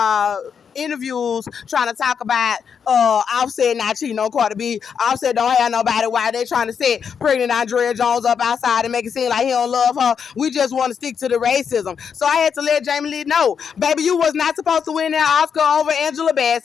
interviews trying to talk about Offset not cheating on Cardi B. Offset don't have nobody. Why they trying to set pregnant Andrea Jones up outside and make it seem like he don't love her? We just want to stick to the racism. So I had to let Jamie Lee know, baby, you was not supposed to win that Oscar over Angela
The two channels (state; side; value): quieter; right; 6.9 dB